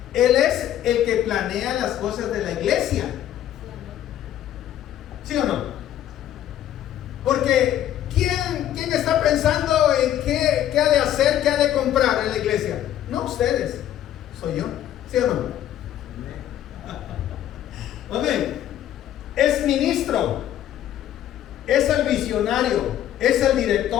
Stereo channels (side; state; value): right; quieter; 11.6 dB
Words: él es el que planea las cosas de la iglesia. ¿Sí o no? Porque ¿quién está pensando en qué ha de hacer, qué ha de comprar en la iglesia? No ustedes, soy yo. ¿Sí o no? Amén. Es ministro, es el visionario, es el